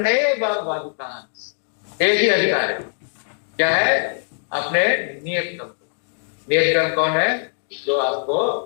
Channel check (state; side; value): silent; right; digital silence